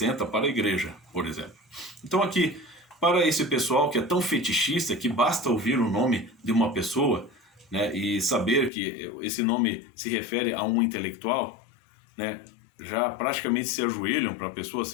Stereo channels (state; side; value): drops out; right; at 8.7 s